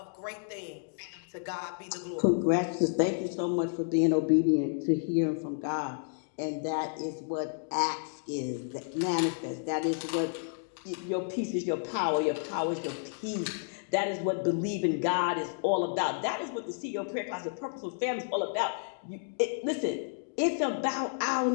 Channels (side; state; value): right; silent; digital silence